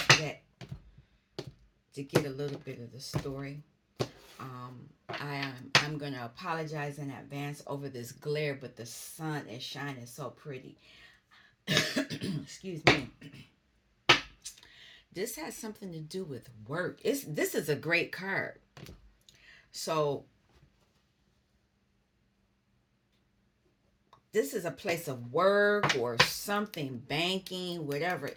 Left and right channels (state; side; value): identical; both; correlation 1.00